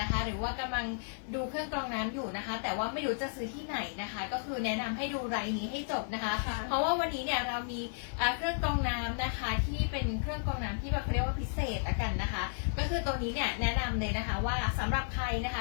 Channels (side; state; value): right; silent; 56 dB below the other